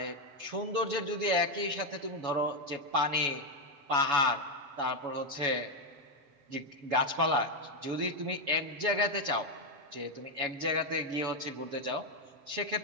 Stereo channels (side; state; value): left; late; 7.1 ms